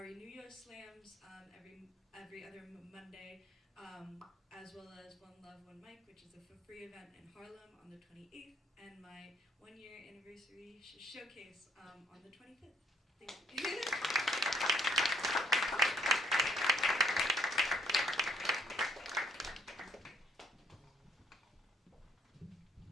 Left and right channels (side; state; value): both; normal; correlation 0.64